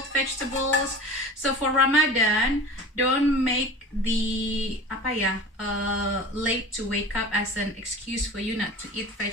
vegetables. So for Ramadan, don't make the late to wake up as an excuse for you not to eat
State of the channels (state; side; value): normal; both; correlation 0.37